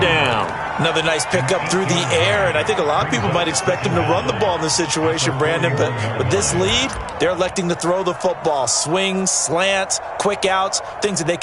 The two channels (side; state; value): both; identical; correlation 1.00